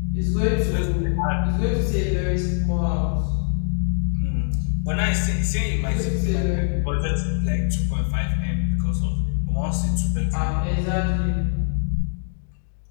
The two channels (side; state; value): right; silent; digital silence